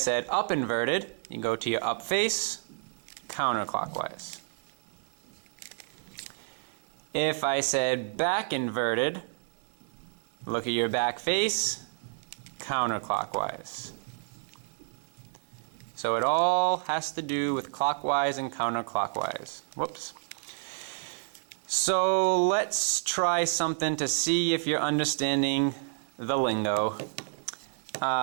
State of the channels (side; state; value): left; silent; 58 dB below the other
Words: up inverted, you go to your up face, counterclockwise. If I said back inverted, look at your back face, counterclockwise. So it all has to do with clockwise and counterclockwise. Whoops. So let's try something to see if you're understanding the lingo.